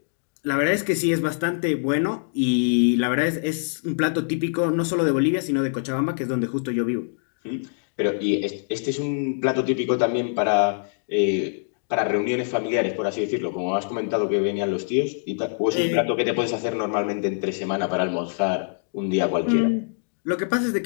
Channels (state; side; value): silent; right; digital silence